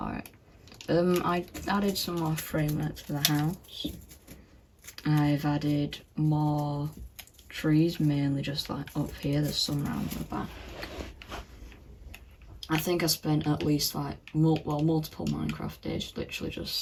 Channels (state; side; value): identical; both; correlation 1.00